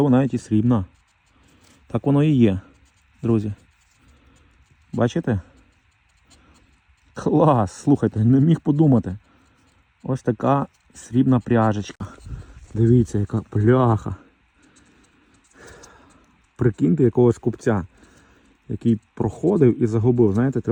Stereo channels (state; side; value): identical; both; correlation 1.00